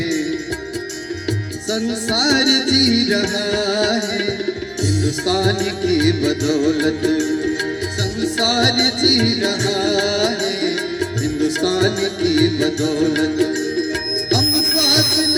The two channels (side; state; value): both; identical; correlation 1.00